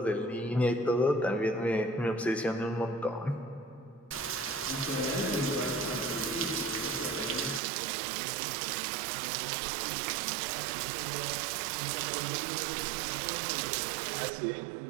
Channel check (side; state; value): left; drops out; at 7.6 s